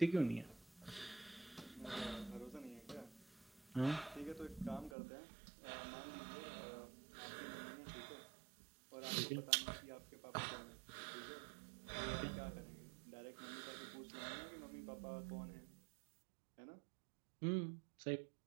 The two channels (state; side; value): drops out; left; at 5.0 s